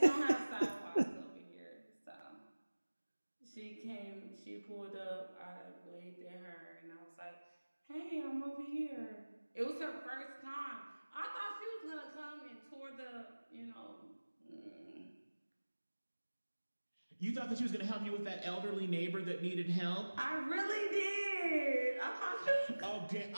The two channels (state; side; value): inverted; both; correlation -1.00